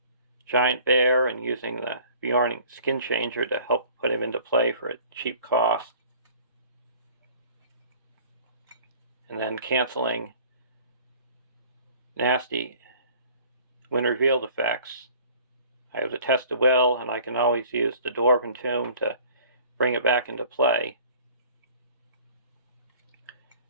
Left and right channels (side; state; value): both; inverted; correlation -0.50